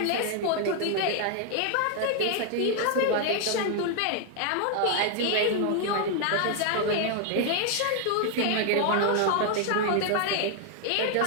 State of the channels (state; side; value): different; both; correlation 0.00